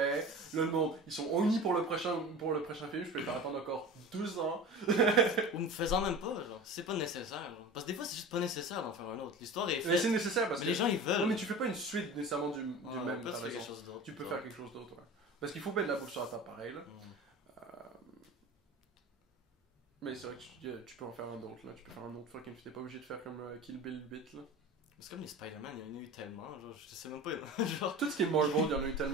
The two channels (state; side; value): normal; both; correlation 0.35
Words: Là, le monde, ils sont unis pour le prochain film. Je peux les faire attendre encore 2 ans. Ou me faisant même pas, genre. C'est pas nécessaire, genre. Parce que des fois, c'est juste pas nécessaire d'en faire un autre. L'histoire est Mais faite. c'est nécessaire parce Mais que. les gens, ils veulent. Non, mais tu fais pas une suite nécessairement du Ouais, même. peut-être T'as faire raison. quelque chose d'autre. Tu peux genre. faire quelque chose d'autre, ouais. Parce qu'il faut mettre de la bouffe sur la table pareil, là. Mais c'est vrai que tu peux en faire un autre, là. Tu peux faire un autre fucking film. T'es pas obligé de faire comme Kill Bill 8, là. C'est comme les Spider-Man, il y en a eu tellement, genre, je sais même pas, genre, Tout ce qui est Marvel, il y en a eu